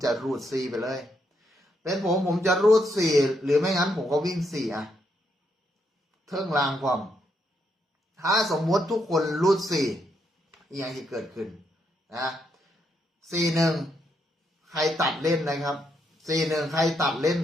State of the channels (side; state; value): both; normal; correlation 0.78